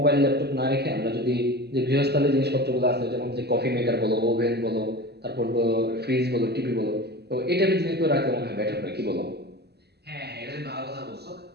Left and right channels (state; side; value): late; left; 0.48 ms